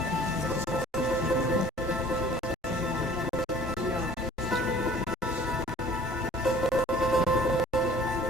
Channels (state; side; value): normal; both; correlation 0.50